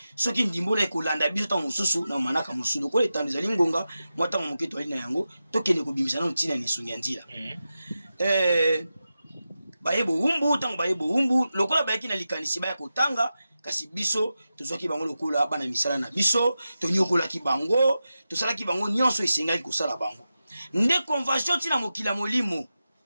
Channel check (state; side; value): inverted; both; correlation -0.92